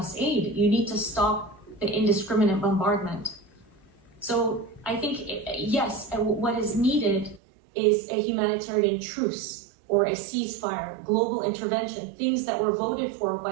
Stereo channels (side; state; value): left; drops out; at 7.4 s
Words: aid. You need to stop the indiscriminate bombardment. So I think, yes, what is needed is a humanitarian truce or a ceasefire, global intervention, things that were voted for